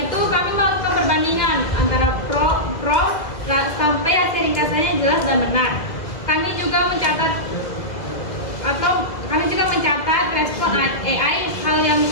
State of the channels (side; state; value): right; late; 1.8 ms